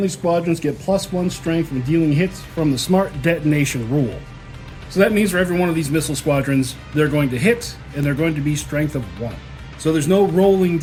squadrons get +1 strength when dealing hits from the smart detonation rule. So that means for every one of these missile squadrons, they're going to hit, and they're going to be strength of 1. So there's no rolling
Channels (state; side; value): identical; both; correlation 1.00